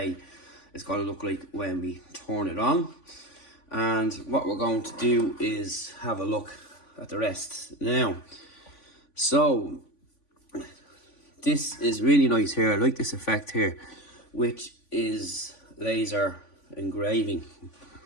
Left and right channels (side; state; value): right; late; 3.5 ms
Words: is going to look like when we turn it on. And what we're going to do is have a look at the rest now. So this is really nice here. I like this effect here, which is laser engraving.